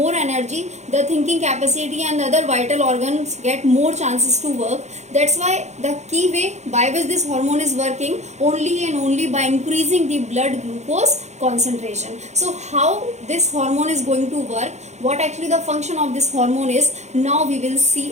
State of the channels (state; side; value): late; left; 0.33 ms